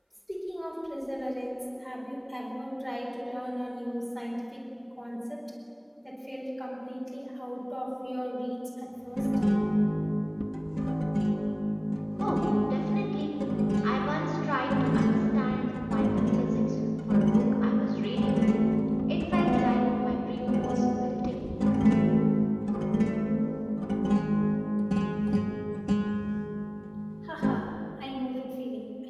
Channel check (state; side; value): identical; both; correlation 1.00